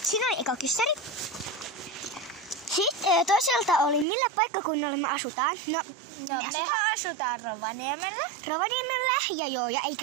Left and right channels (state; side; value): drops out; left; at 4.0 s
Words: oli eka kyssäri. Sitten toiselta oli, millä paikkakunnalla me asutaan. Mehän asutaan Rovaniemellä. Ja ei